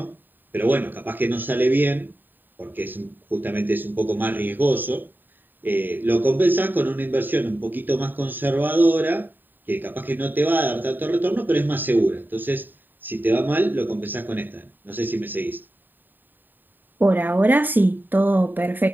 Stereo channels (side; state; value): left; late; 0.091 ms